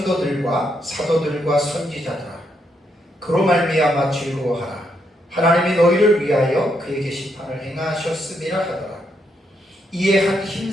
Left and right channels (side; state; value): both; normal; correlation 0.78